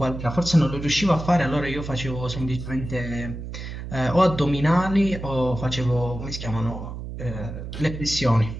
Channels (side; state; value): right; noise; hum, 8 dB below the sound